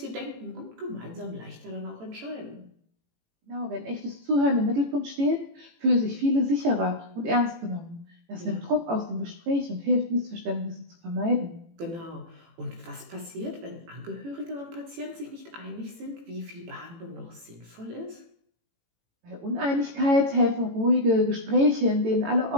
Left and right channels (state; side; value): late; left; 18 ms